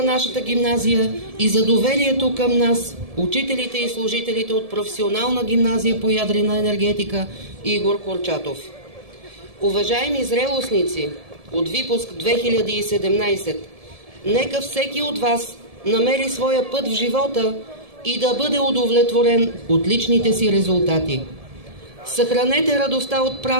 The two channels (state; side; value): late; left; 1.7 ms